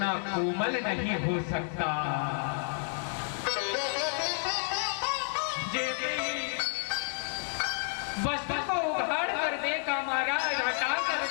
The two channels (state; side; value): silent; right; 57 dB below the other